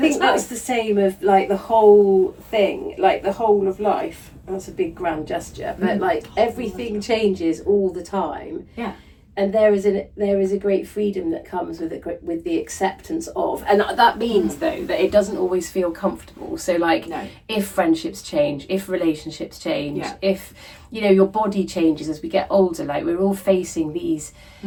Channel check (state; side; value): identical; both; correlation 1.00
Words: that's the same of like the whole thing, like the whole of life. That's a big grand gesture, but like everything changes all the time. Yeah. And there is a great freedom that comes with the acceptance of, and that means though that it doesn't always feel comfortable. So like, if friendships change, if relationships change, if your body changes as we get older, like we're all facing these